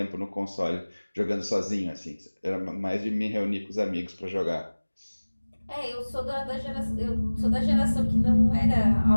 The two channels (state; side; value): inverted; both; correlation -1.00